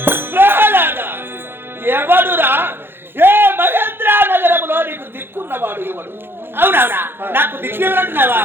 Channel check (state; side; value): late; left; 0.10 ms